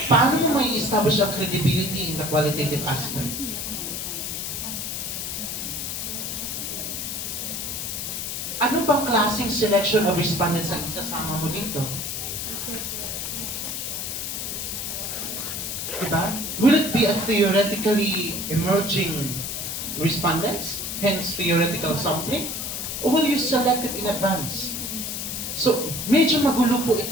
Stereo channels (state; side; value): noise; left; hiss, 4 dB below the sound